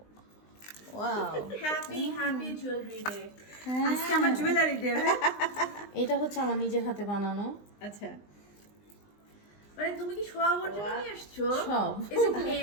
ওয়াও হ্যাপি জুয়েলারি ডে আজকে আমার জুয়েলারি ডে এটা হচ্ছে আমার নিজের হাতে বানানো আচ্ছা মানে তুমি কি সবার জন্য নিয়ে আসছো সব ইজ ইট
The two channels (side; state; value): right; late; 20 ms